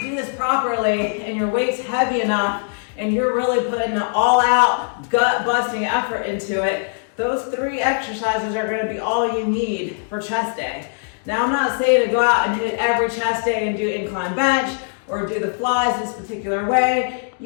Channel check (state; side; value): silent; right; digital silence